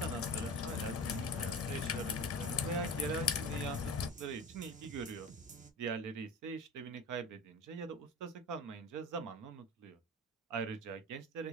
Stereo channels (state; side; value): normal; both; correlation 0.33